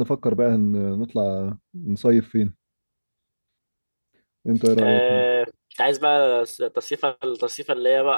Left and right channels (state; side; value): inverted; both; correlation -1.00